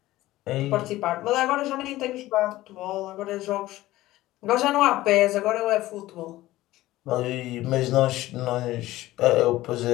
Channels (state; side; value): quieter; right; 16.5 dB